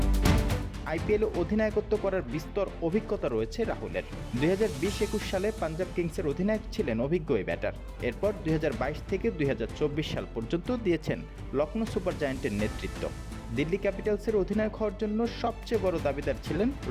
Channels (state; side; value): identical; both; correlation 1.00